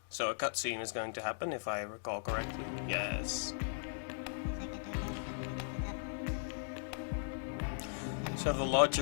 So a cutscene is going to happen, if I recall correctly. Yes. So the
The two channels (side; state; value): right; silent; digital silence